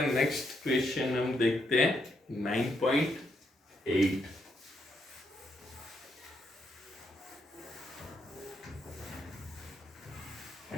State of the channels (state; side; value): normal; both; correlation 0.78